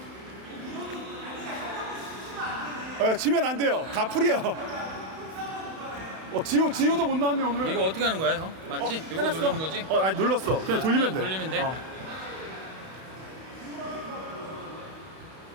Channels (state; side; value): late; left; 31 ms